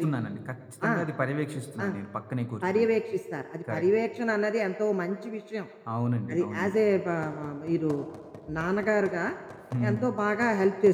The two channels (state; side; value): identical; both; correlation 1.00